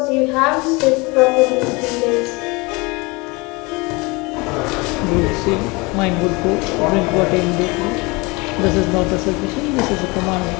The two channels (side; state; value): right; quieter; 25.8 dB